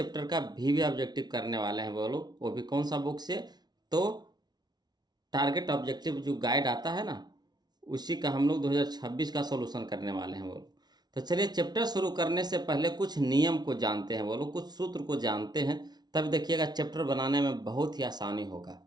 का भी ऑब्जेक्टिव करने वाले हैं बोलो। वो भी कौन सा बुक से? तो टारगेट ऑब्जेक्टिव जो गाइड आता है ना, उसी का हम लोग 2026 का सॉल्यूशन करने वाले हैं बोलो। तो चलिए चैप्टर शुरू करने से पहले कुछ नियम को जानते हैं बोलो, कुछ सूत्र को जानते हैं, तब देखिएगा चैप्टर बनाने में बहुत ही आसानी होगा,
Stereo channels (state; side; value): late; left; 0.19 ms